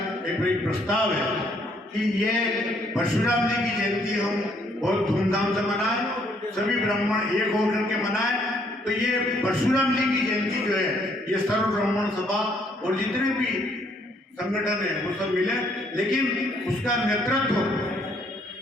एक प्रस्ताव है कि ये परशुराम जी की जयंती हम बहुत धूमधाम से मनाएं, सभी ब्राह्मण एक होकर के मनाएं। तो ये परशुराम जी की जयंती जो है ये सर्व ब्राह्मण सभा और जितने भी संगठन है वो सब मिले, लेकिन उसका नेतृत्व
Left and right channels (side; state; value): both; normal; correlation 0.67